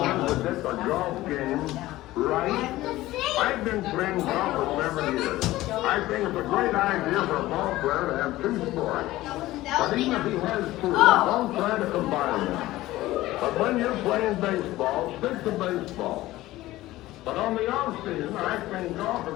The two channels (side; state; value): right; quieter; 16.8 dB